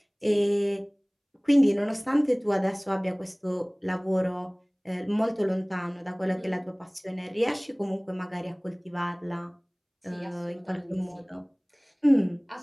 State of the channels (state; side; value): identical; both; correlation 1.00